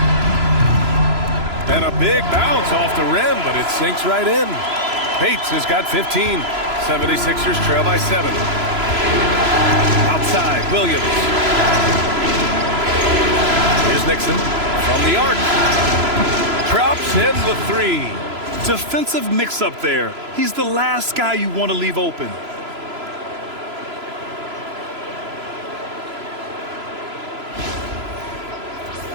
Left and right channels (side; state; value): left; late; 3.0 ms